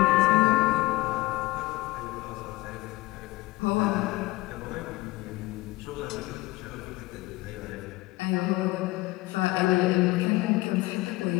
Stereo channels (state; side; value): quieter; right; 20.0 dB